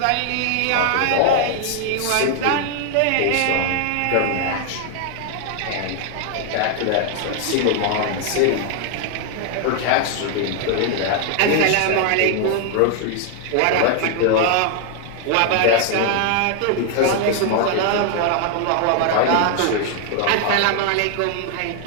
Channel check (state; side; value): different; both; correlation 0.00